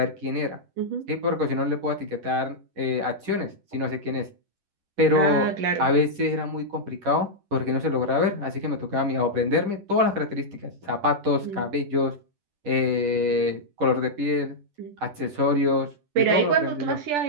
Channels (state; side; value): late; left; 10 ms